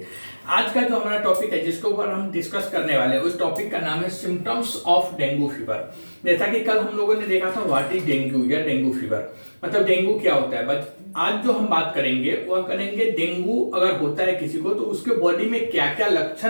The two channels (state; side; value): inverted; both; correlation -1.00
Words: आज का जो हमारा टॉपिक है जिसके ऊपर हम डिस्कस करने वाले हैं उस टॉपिक का नाम है सिम्टम्स ऑफ डेंगू फीवर। जैसा कि कल हम लोगों ने देखा था व्हाट इज डेंगू या डेंगू फीवर, मतलब डेंगू क्या होता है। बट आज जो हम बात करेंगे वह करेंगे डेंगू अगर होता है किसी को तो उसके बॉडी में क्या क्या